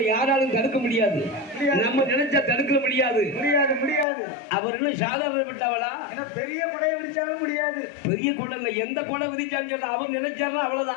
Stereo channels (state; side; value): drops out; right; at 4.0 s